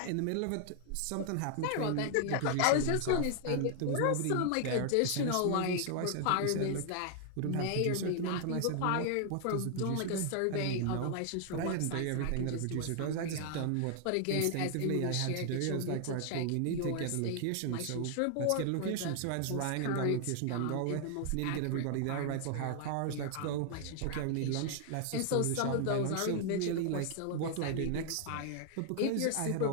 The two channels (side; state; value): both; different; correlation 0.00